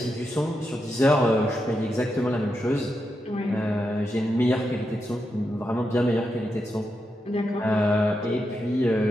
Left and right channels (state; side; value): normal; both; correlation 0.86